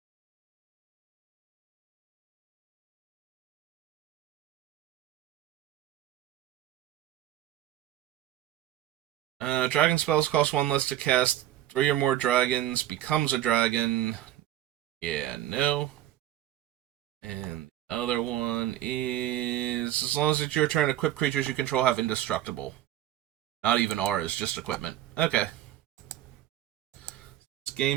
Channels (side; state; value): left; quieter; 13.1 dB